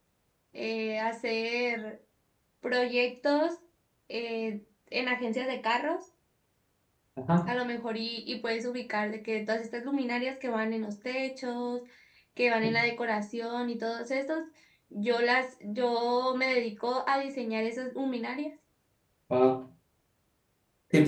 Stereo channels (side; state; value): both; identical; correlation 1.00